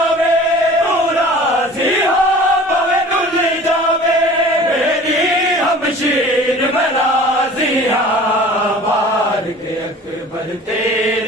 तू राजी हो भावे रुल जावे मेरी हमशीर में राजिया बार के अकबर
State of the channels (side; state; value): both; normal; correlation 0.44